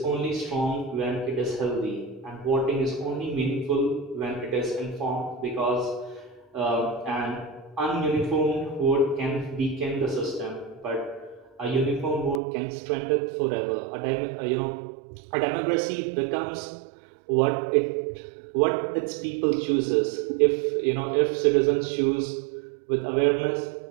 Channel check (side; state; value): left; drops out; at 12.4 s